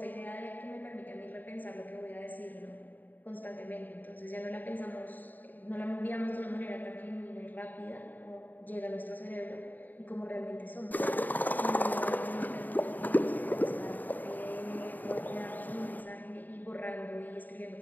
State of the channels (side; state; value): right; late; 0.086 ms